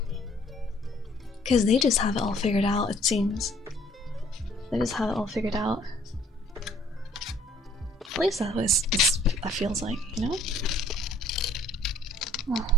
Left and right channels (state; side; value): normal; both; correlation 0.60